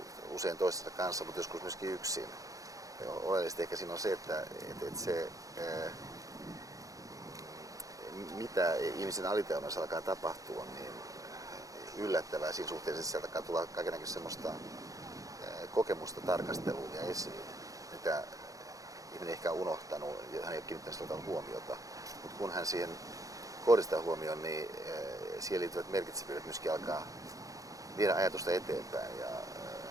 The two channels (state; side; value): late; left; 0.17 ms